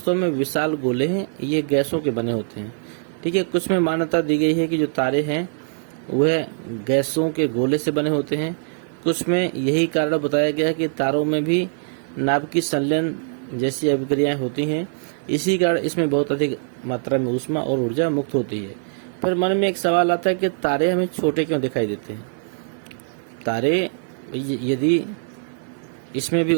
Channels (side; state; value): left; silent; digital silence